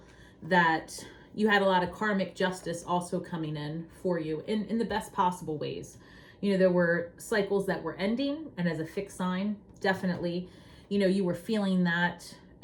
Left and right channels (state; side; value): identical; both; correlation 1.00